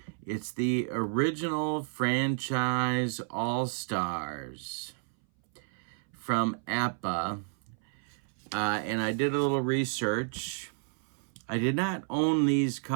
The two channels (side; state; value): left; silent; 57 dB below the other